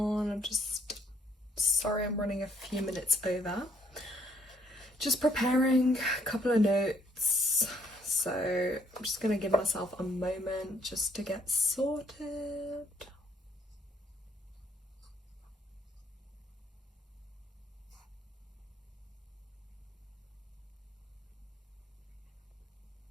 I'm just sorry I'm running a few minutes over. Just preparing a couple of notes, so I'm just gonna give myself a moment just to get sorted.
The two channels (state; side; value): normal; both; correlation 0.66